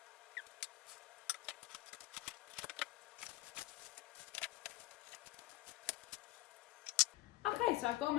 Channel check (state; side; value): quieter; right; 16.7 dB